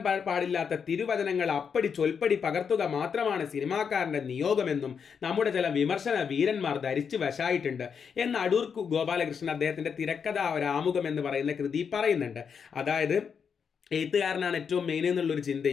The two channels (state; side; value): quieter; right; 6.6 dB